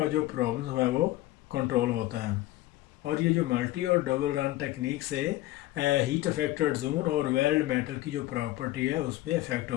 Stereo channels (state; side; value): quieter; right; 16.4 dB